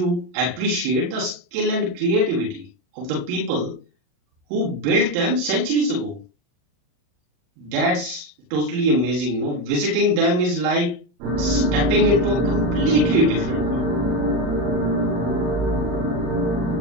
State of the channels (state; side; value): late; left; 40 ms